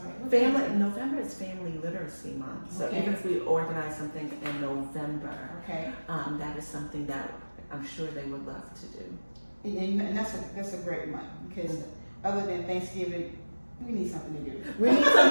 November is Family Literacy Month. So even if we organize something in November, that is something that I'm sure they would love to do. And that's a great month because other than Thanksgiving, we need something to do. We need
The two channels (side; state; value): both; inverted; correlation -1.00